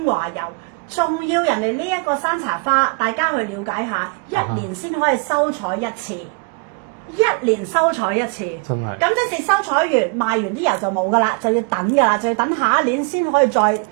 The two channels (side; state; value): left; quieter; 34.9 dB